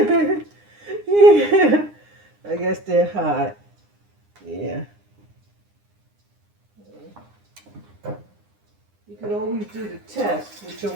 I guess they're hot. Yeah. You can always do the test with your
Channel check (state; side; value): late; left; 9.8 ms